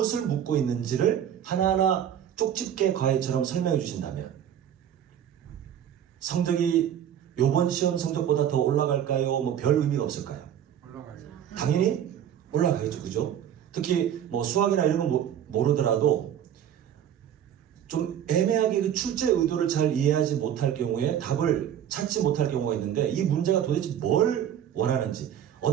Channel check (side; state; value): left; quieter; 9.8 dB